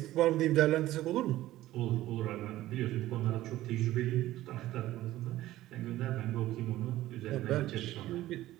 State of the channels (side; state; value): left; quieter; 15.3 dB